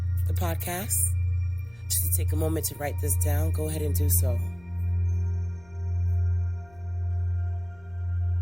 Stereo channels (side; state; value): left; noise; hum, 27 dB below the sound